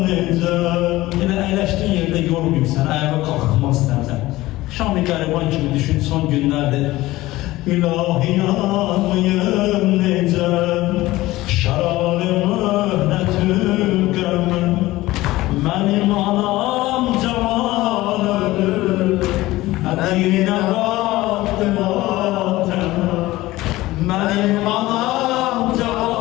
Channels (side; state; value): right; quieter; 17.9 dB